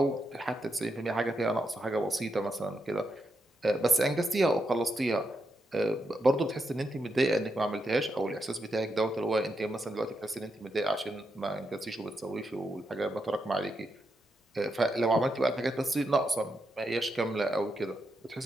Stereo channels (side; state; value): both; normal; correlation 0.83